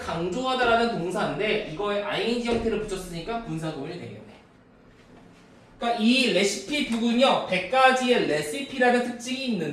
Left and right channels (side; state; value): both; identical; correlation 1.00